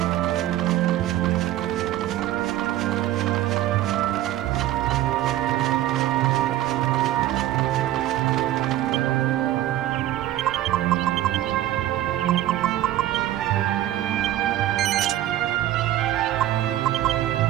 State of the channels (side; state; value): left; quieter; 13.8 dB